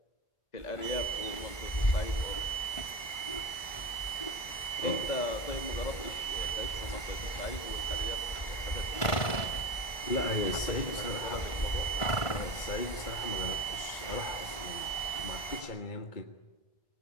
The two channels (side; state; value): right; late; 1.5 ms